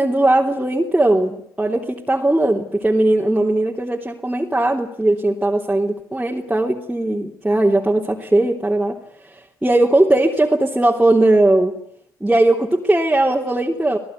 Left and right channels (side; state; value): both; normal; correlation 0.94